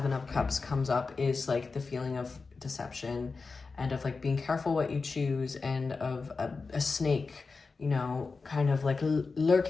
of Cups comes up is like the feeling of deception and of like being careful what you choose, and of a snake, you know, kind of like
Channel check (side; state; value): right; quieter; 4.3 dB